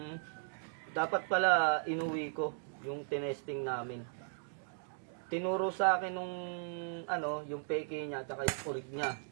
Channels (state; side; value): silent; left; digital silence